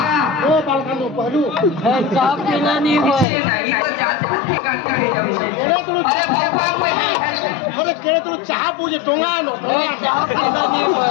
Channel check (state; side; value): drops out; right; at 3.2 s